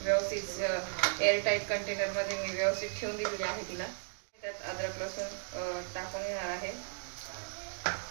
व्यवस्थित एअरटाईट कंटेनरमध्ये मी व्यवस्थित ठेवून दिलेली आहे तिला. त्यात अद्रक लसूण टाकून घेणार आहे.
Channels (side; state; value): left; silent; digital silence